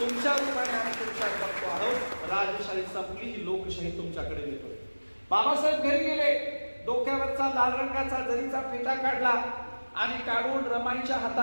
रूपाने आम्ही तुमच्यात बघतो आहोत. राजशाही संपली, ही लोकशाही तुमच्याकडे येतोय. बाबासाहेब घरी गेले, डोक्यावरचा लाल रंगाचा जरीचा फेटा काढला आणि काढून रमाईच्या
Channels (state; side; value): inverted; both; correlation -1.00